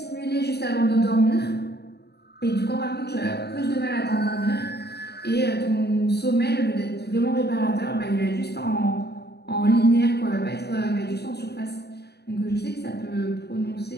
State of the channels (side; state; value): right; late; 0.48 ms